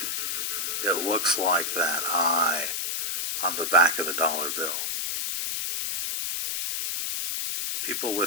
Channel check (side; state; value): left; noise; hiss, 1 dB below the sound